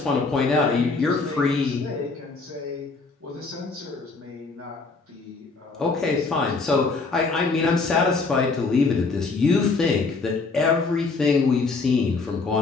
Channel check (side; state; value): right; quieter; 4.1 dB